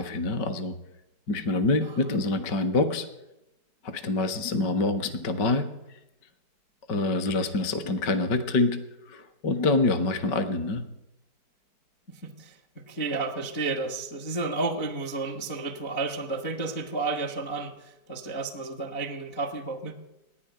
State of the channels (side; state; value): right; late; 5.2 ms